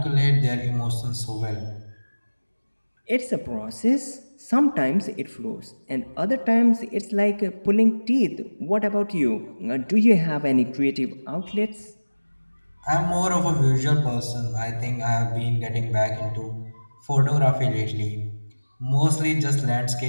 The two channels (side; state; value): both; inverted; correlation -1.00